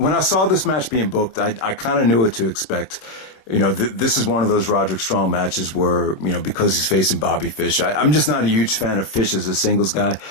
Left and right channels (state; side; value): late; right; 26 ms